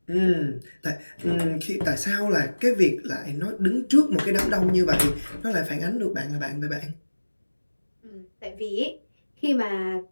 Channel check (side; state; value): both; inverted; correlation -1.00